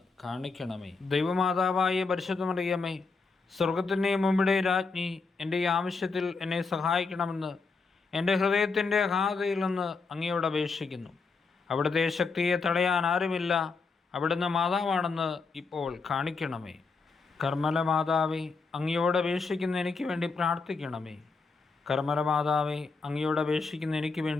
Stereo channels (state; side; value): quieter; right; 4.5 dB